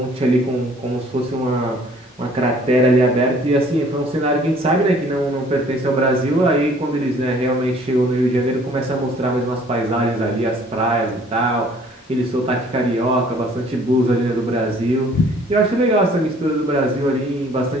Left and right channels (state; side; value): normal; both; correlation 0.56